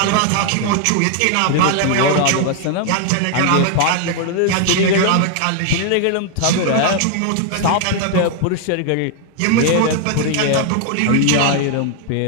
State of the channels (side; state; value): both; different; correlation 0.00